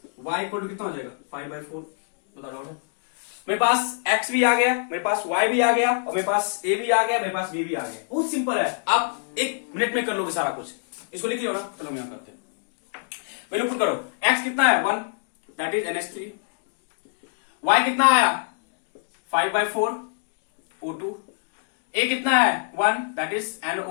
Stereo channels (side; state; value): right; silent; digital silence